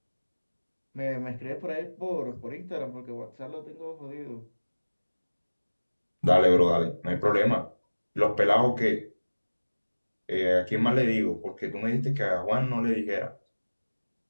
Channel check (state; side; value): inverted; both; correlation -1.00